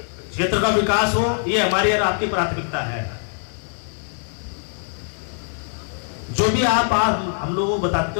क्षेत्र का विकास हो ये हमारी और आपकी प्राथमिकता है। जो भी आप हम लोगों को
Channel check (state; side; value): silent; right; 60 dB below the other